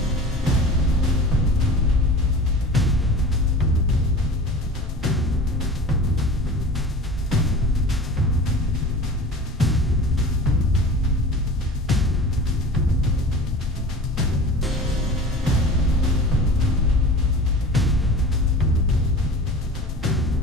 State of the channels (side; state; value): both; normal; correlation 0.38